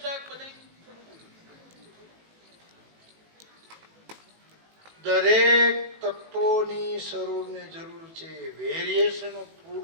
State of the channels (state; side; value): late; left; 18 ms